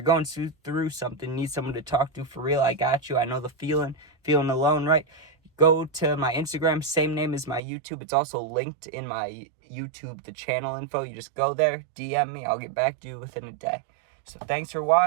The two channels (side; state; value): left; drops out; at 7.6 s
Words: going through something, need someone to talk to for real, I got you. I know the feeling alone, right? Go to my Instagram, same name as my YouTube. It's also linked in my YouTube, the channel info. You just go there, DM me. I'll get back to you within a day. So thanks for